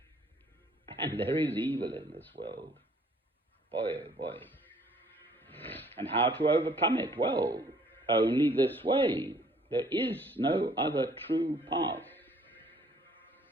And there is evil in this world. Boy, oh boy. And how to overcome it? Well, only this way. There is no other true path.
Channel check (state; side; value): normal; both; correlation 0.59